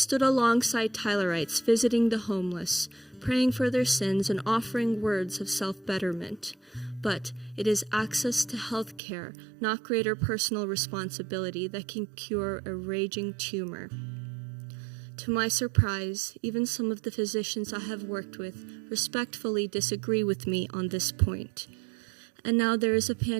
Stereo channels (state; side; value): drops out; left; at 9.0 s